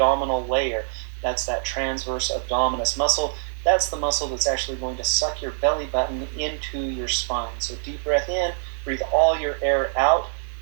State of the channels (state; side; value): silent; left; digital silence